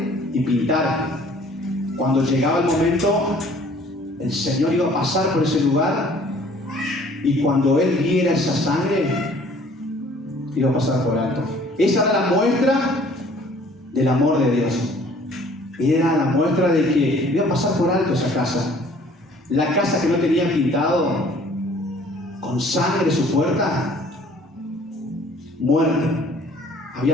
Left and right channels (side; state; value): both; normal; correlation 0.55